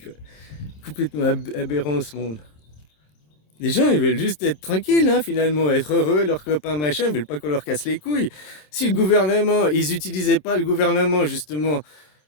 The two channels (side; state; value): right; late; 27 ms